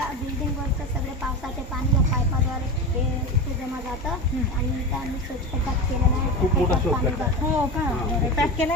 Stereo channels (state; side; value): normal; both; correlation 0.24